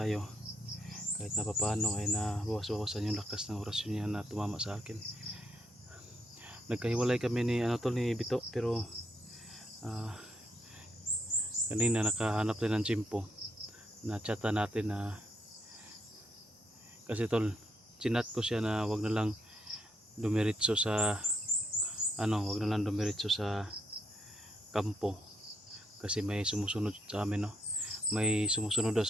kahit na papaano ay nabawas-bawasan yung lakas ng orasyon niya na tumama sa akin. Nagkahiwalay kami ni tol, ni Bito, pero kanina nakahanap din ng tsimpo na chata natin na kasi tol, chinat ko siya na wag na lang dumiretso sa wag na lang dumiretso sa kampo kasi may sumusunod sa amin, no? May sumusunod daw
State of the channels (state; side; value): normal; both; correlation 0.76